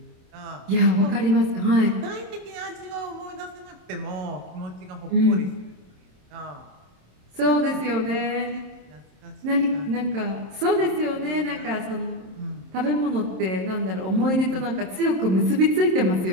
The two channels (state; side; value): late; left; 27 ms